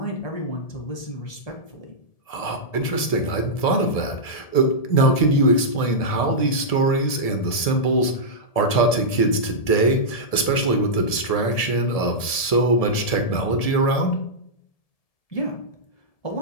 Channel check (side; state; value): right; late; 1.7 ms